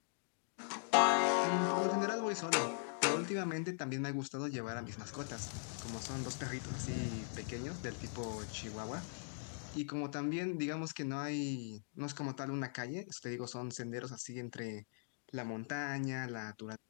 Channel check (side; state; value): right; silent; digital silence